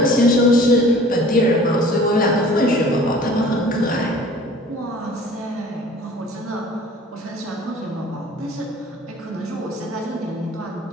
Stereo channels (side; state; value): both; normal; correlation 0.47